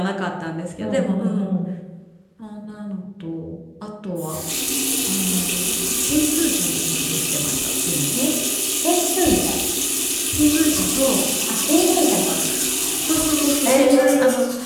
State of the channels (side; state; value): both; identical; correlation 1.00